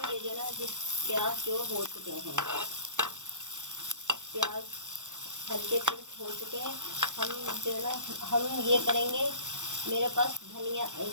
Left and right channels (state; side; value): late; left; 0.85 ms